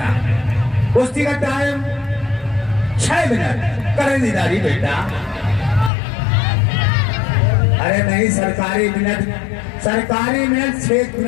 कुश्ती का टाइम 6 मिनट करें दीदारी बेटा। अरे नहीं, सरकारी मिनट 6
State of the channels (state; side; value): drops out; right; at 5.9 s